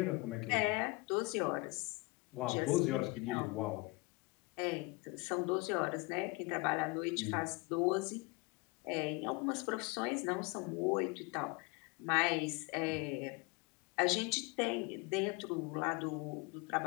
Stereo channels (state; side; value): quieter; right; 26.2 dB